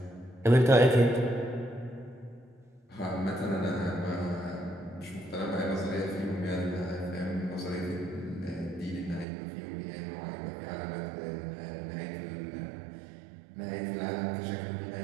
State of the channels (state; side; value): drops out; left; at 9.2 s